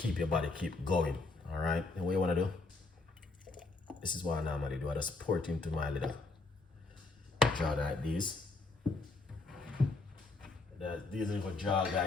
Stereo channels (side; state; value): right; quieter; 3.5 dB